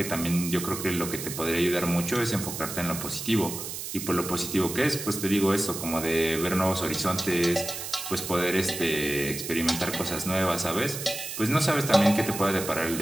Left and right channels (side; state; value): right; noise; hiss, 7 dB below the sound